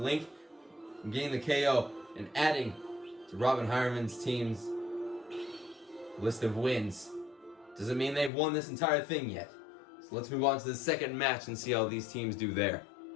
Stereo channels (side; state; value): right; drops out; at 8.3 s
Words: from getting the KO and adding to Robin Hireman's team's list of wins doesn't mean they've won this entire thing yet. So let's move on to the second match and see how these teams do there.